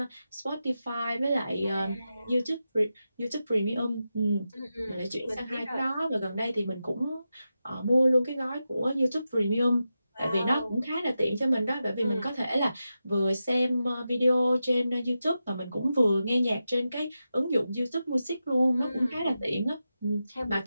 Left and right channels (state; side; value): inverted; both; correlation -0.90